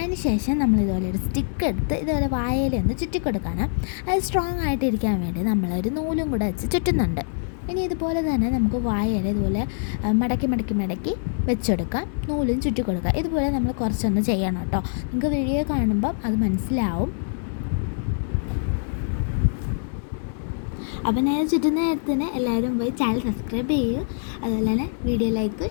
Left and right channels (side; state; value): right; silent; 60 dB below the other